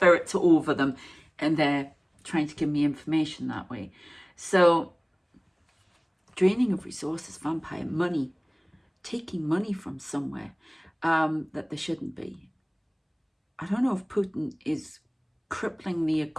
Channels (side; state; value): both; identical; correlation 1.00